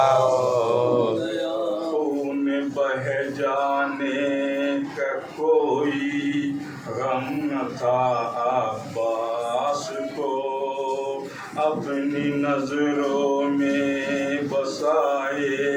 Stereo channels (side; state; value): both; identical; correlation 1.00